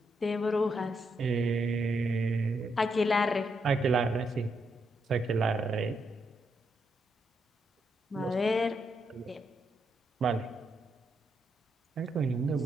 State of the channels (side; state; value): both; normal; correlation 0.80